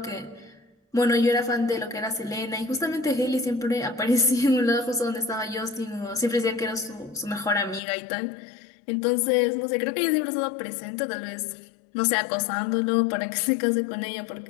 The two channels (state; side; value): drops out; right; at 7.8 s